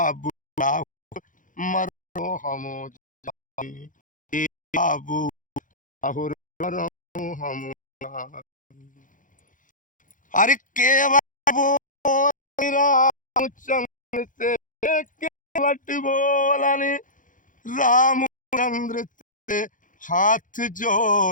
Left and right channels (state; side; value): late; right; 0.38 ms